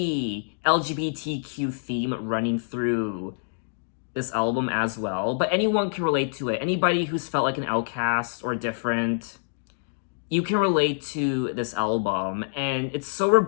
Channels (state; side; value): silent; right; digital silence